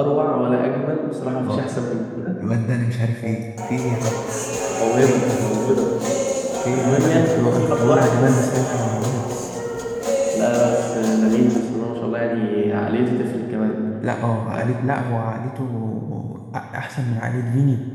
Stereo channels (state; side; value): identical; both; correlation 1.00